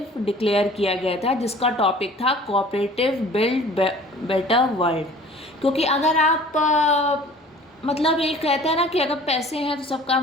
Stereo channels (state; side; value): normal; both; correlation 0.48